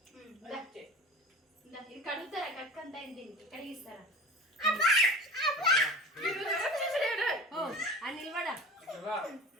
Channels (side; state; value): both; normal; correlation 0.36